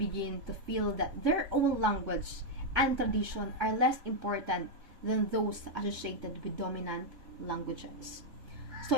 to feel that their own language and tradition are less important than those associated with dominant languages. So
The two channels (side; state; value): left; late; 3.5 ms